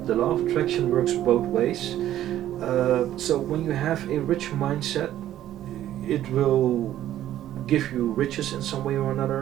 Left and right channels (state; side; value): quieter; left; 12.5 dB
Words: the law of attraction works both ways. So when you have a rich mindset, it will give you riches in some way or